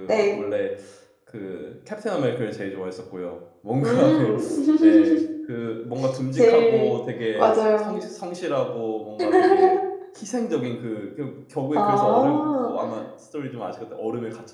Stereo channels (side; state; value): both; identical; correlation 1.00